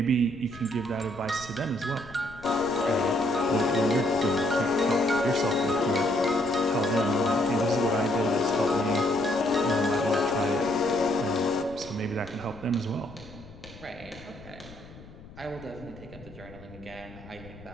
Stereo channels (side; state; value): left; noise; rumble, 19 dB below the sound